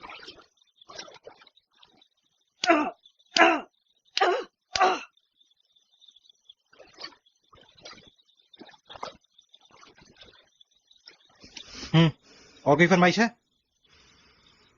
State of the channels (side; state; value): both; identical; correlation 1.00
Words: और कोई फरमाइश है?